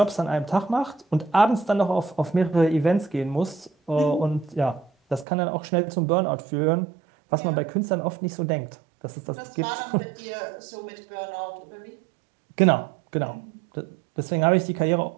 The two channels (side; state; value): left; drops out; at 5.2 s